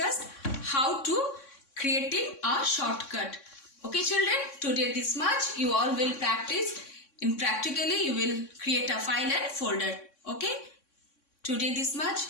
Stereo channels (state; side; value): late; right; 3.6 ms